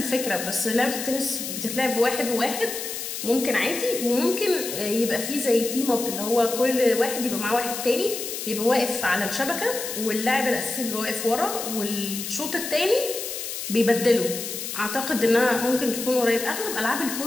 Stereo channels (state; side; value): noise; left; hiss, 6 dB below the sound